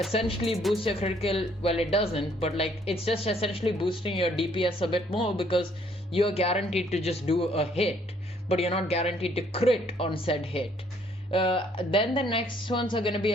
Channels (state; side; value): normal; both; correlation 0.64